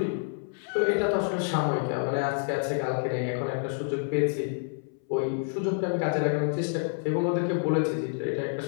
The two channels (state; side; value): silent; right; 59 dB below the other